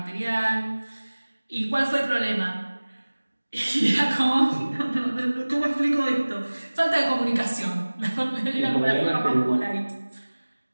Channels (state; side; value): inverted; both; correlation -1.00